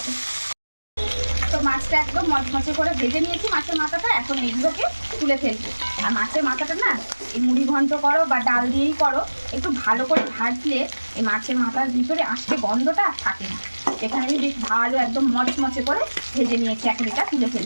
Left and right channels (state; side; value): inverted; both; correlation -1.00